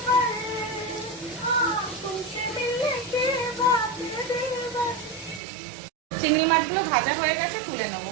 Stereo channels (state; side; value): drops out; left; at 5.4 s